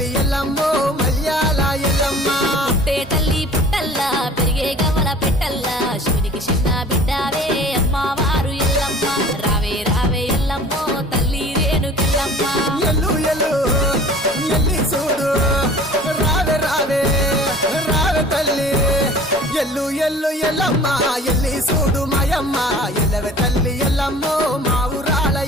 ఎల్లమ్మో మల్యాల ఎల్లమ్మ పుట్టే తల్లి పుట్టల్లా పెరిగే గవల పెట్టల్లా శివునికి చిన్న బిడ్డావే అమ్మవారు ఎల్లమ్మ రావే రావే ఎల్లమ్మో తల్లి రేణుకెల్లమ్మ ఎల్లు ఎల్లు ఎల్లి చూడు రావే రావే రావే తల్లి ఎల్లు ఎల్లు ఎల్లమ్మ ఎల్లి చూడు మాయమ్మ ఎల్లవే తల్లి ఎల్లమ్మో మా ఊరాల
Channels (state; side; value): normal; both; correlation 0.46